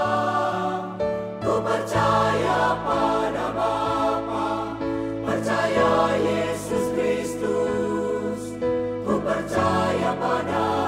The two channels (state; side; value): identical; both; correlation 1.00